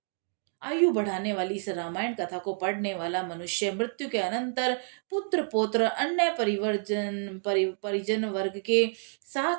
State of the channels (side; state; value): left; silent; 59 dB below the other